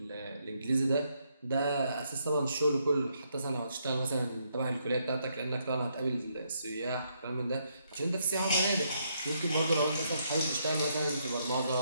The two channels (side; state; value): both; inverted; correlation -0.75